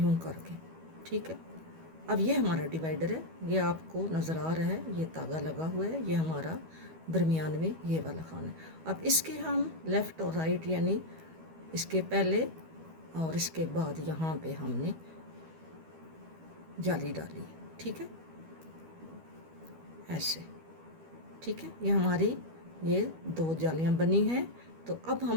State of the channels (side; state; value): left; late; 12 ms